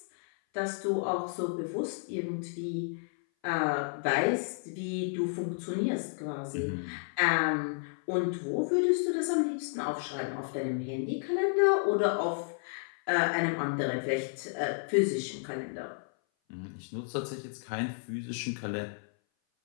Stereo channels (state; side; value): silent; right; 57 dB below the other